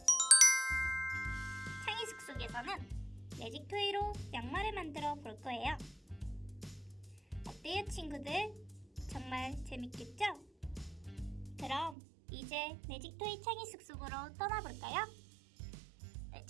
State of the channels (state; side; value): drops out; left; at 12.0 s